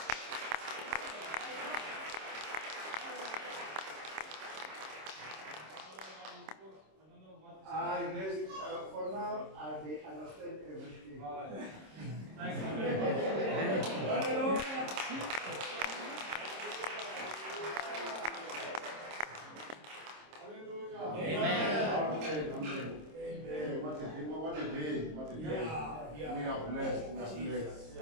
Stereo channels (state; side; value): late; left; 26 ms